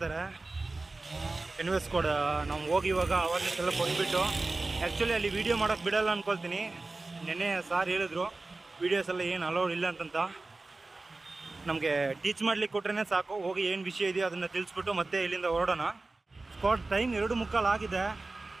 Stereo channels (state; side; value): quieter; left; 3.3 dB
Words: ಎನ್ವೆಸ್ ಕೂಡ ನಾವು ಹೋಗಿ ಇವಾಗ ಅವೇರ್ನೆಸ್ ಎಲ್ಲ ಕೊಟ್ಬಿಟ್ಟು, ಆ್ಯಕ್ಚುಲಿ ಅಲ್ಲಿ ವೀಡಿಯೋ ಮಾಡೋಕ್ಕೆ ಬಿಡೋಲ್ಲ ಅಂದ್ಕೊಳ್ತೀನಿ. ನೆನ್ನೆ ಸಾರ್ ಹೇಳಿದ್ರು ವೀಡಿಯೋಸ್ ಎಲ್ಲ ಏನು ಅಲೌಡ್ ಇಲ್ಲ ಅಂತಂತ. ನಮಗೆ ಟೀಚ್ ಮಾಡ್ಲಿಕ್ಕೆ ಕೊಟ್ರೇ ಸಾಕು, ಹೋಗಿ ಏನು ವಿಷಯ ಇದೆಯೋ ಅದನ್ನು ತಿಳಿಸ್ಬಿಟ್ಟು ಮತ್ತೆ ಇಲ್ಲಿಂದ ಹೊರಡೋಣ. ಸ್ಪಾಟ್ ಟೈಮ್ 2:45 ಆಗಿದೆ.